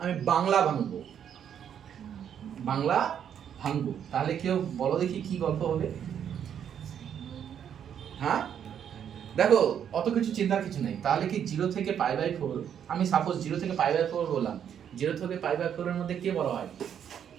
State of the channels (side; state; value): left; quieter; 8.8 dB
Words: আমি বাংলা ভাঙবো, তাহলে কেউ বলো দেখি কি গল্প হবে। হ্যাঁ দেখো, অত কিছু চিন্তার কিছু নেই। তাহলে কি 0 থেকে π/4, আমি সাপোজ 0 থেকে π/4 বললাম, 0 থেকে π/4 এর মধ্যে কে বড় হয়,